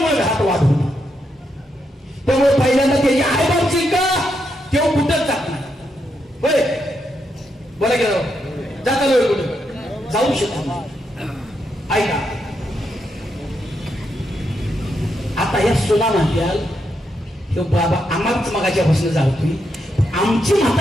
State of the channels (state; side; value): normal; both; correlation 0.81